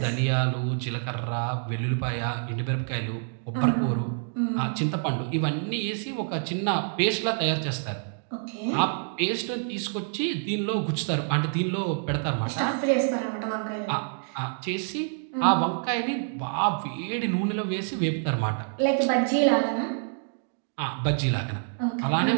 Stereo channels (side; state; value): left; silent; 60 dB below the other